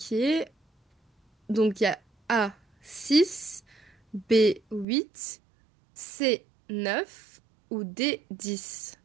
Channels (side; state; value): left; drops out; at 4.9 s